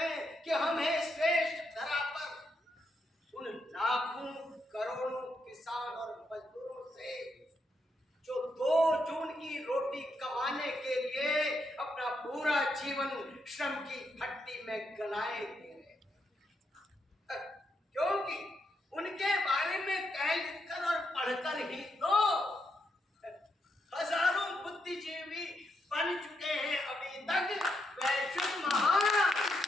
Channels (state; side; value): normal; both; correlation 0.80